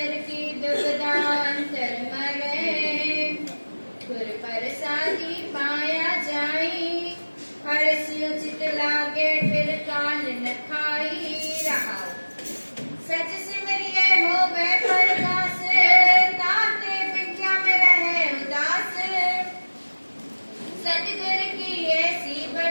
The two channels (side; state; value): both; inverted; correlation -1.00